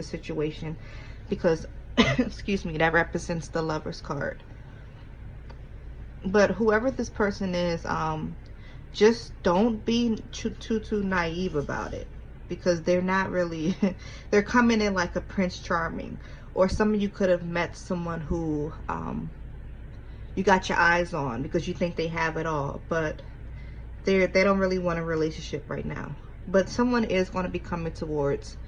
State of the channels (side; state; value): both; identical; correlation 1.00